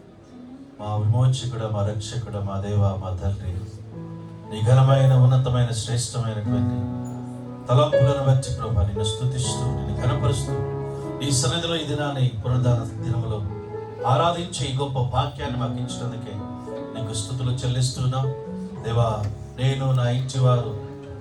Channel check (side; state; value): both; identical; correlation 1.00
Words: మా విమోచకుడు, మా రక్షకుడు, మా దేవ, మా తండ్రి, నీ ఘనమైన ఉన్నతమైన శ్రేష్టమైనటువంటి తలంపులను బట్టి ప్రభా నిన్ను స్తుతిస్తూ నిన్ను ఘనపరుస్తూ ఈ సన్నిధిలో ఈ దినాన్ని పునరుద్ధాన దినములో ఆరాధించే ఈ గొప్ప వాక్యాన్ని మాకు ఇచ్చినందుకే నీకు స్తుతులు చెల్లిస్తున్నాం దేవా. నేను నా ఇంటి వారు